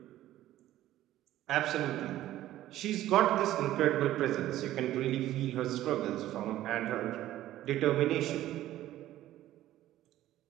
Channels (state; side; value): quieter; left; 14.0 dB